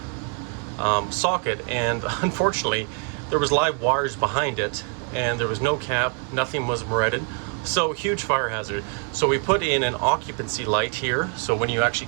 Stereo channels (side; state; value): left; quieter; 38.6 dB